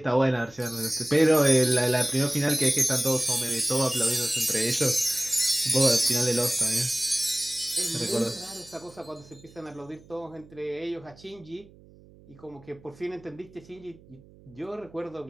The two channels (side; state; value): right; noise; hum, 24 dB below the sound